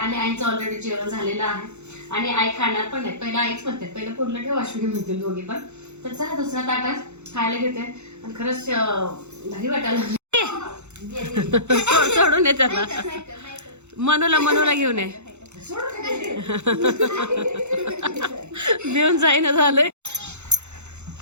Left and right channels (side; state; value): left; late; 0.82 ms